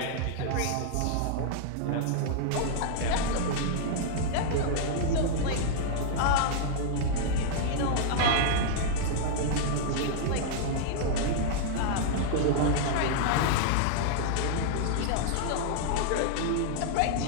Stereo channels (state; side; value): different; both; correlation -0.01